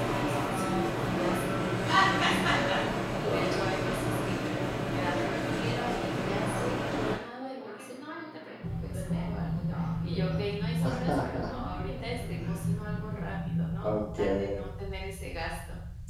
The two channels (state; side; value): identical; both; correlation 1.00